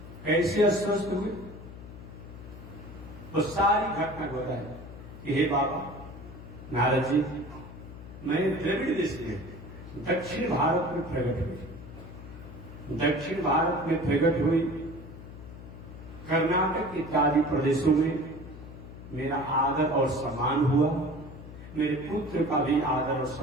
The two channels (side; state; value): left; noise; hum, 14 dB below the sound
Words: कैसे अस्वस्थ हुए? वो सारी घटना को बताया कि हे बाबा नारद जी, मैं द्रविड़ देश में दक्षिण भारत में प्रकट हुई, दक्षिण भारत में प्रकट हुई, कर्नाटक इत्यादि प्रदेशों में मेरा आदर और सम्मान हुआ, मेरे पुत्र का भी आदर और